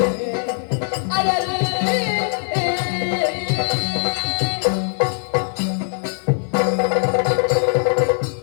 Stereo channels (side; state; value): right; silent; 56 dB below the other